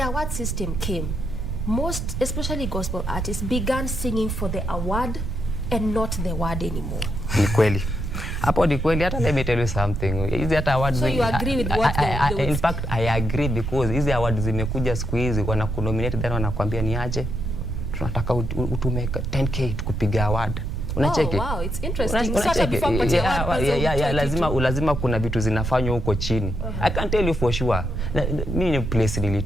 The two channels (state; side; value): noise; right; rumble, 3 dB below the sound